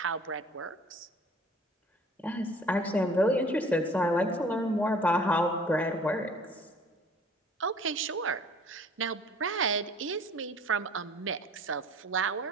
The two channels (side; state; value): both; normal; correlation 0.51